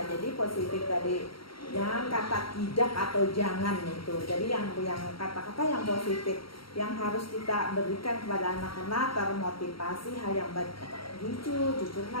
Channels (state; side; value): late; right; 0.74 ms